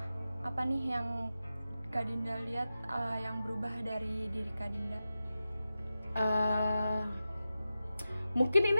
apa nih yang Kak Dinda lihat yang berubah dari diri Kak Dinda? Mungkin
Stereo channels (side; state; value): both; inverted; correlation -0.93